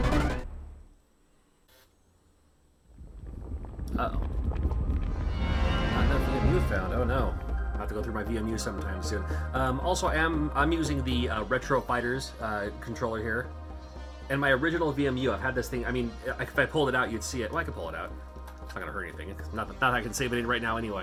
Uh-oh. Not enough VMU found. Oh no. I'll have to go through my VMU sometime soon. Also, I'm using the Retro Fighters controller here. And my original VMU, I've had this thing, I mean, if I pulled it out, you'd see it. Well, I could pull it out. It's not going to hurt anything. Not that I can save it in right now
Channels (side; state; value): both; identical; correlation 1.00